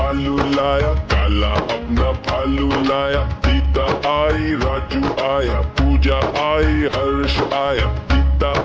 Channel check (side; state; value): both; identical; correlation 1.00